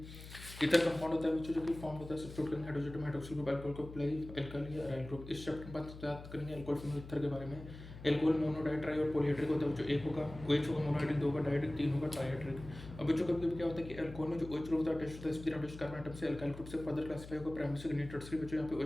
ईथर कंपाउंड होता है बच्चों जो कि फॉर्म होता है सब्स्टिट्यूट करेंगे hydrogen atom hydroxyl group alcohol को प्लाई एल्काइल या अराइल ग्रुप। इस चैप्टर में बात करेंगे अल्कोहल फिनोल ईथर के बारे में। एल्कोहल मोनोडाइट ट्राई और पॉलीहाइड्रिक होता है जो एक होगा OH होगा, मोनोहाइड्रिक 2 होगा, डाइहाइड्रिक 3 होगा, ट्राइहाइड्रिक। अब बच्चों कभी कभी क्या होता है कि अल्कोहल में जो OH ग्रुप होता है अटैच होता है sp3 कार्बन एटम से अल्काइल ग्रुप से फर्दर क्लासिफाई होगा प्राइमरी सेकेंडरी टर्शियरी। बच्चों यहाँ पे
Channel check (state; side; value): noise; left; hum, 14 dB below the sound